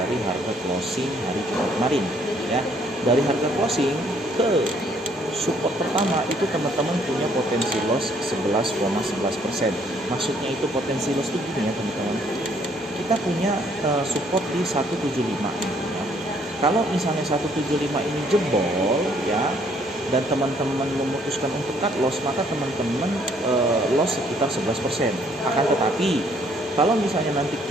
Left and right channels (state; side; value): normal; both; correlation 0.65